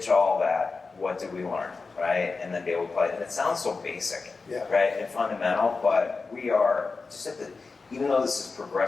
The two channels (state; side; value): quieter; right; 4.2 dB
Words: all that. What did we learn, right? And then be able to play. And it sounds so basic, right, and fundamental, but we are just at even though this is